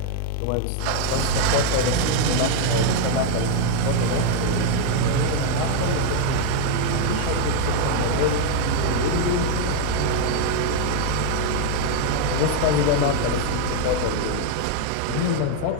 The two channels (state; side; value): different; both; correlation 0.00